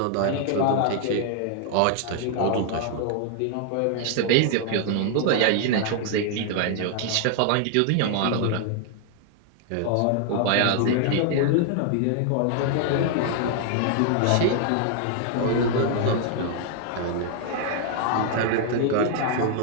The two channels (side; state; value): both; different; correlation 0.00